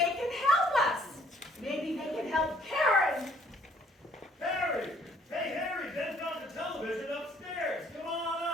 can help us. Maybe they can help Karen. Harry! Hey, Harry, Ben's got the television upstairs. Come on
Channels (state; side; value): normal; both; correlation 0.61